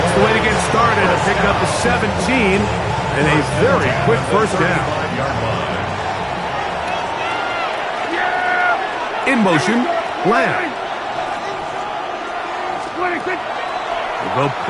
the way to get started. A pickup of 17 and a very quick first down. In motion, Lamb. We'll go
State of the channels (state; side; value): identical; both; correlation 1.00